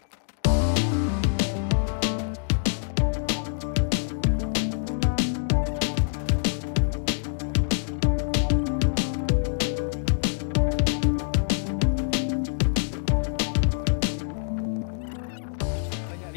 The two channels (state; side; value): silent; right; digital silence